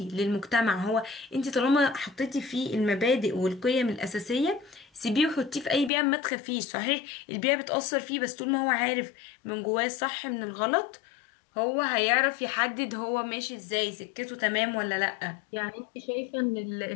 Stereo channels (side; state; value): right; drops out; at 5.9 s